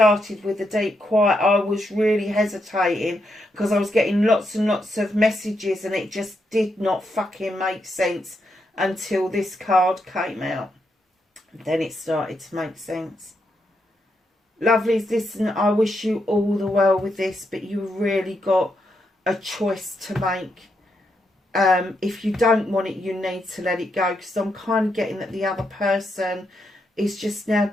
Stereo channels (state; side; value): normal; both; correlation 0.81